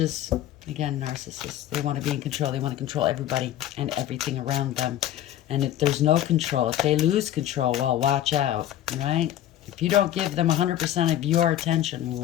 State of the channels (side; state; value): right; quieter; 12.2 dB